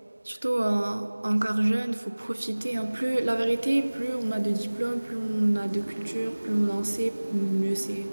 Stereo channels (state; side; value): inverted; both; correlation -1.00